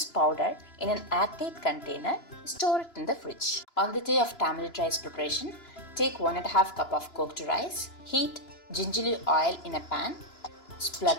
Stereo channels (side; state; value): right; late; 2.9 ms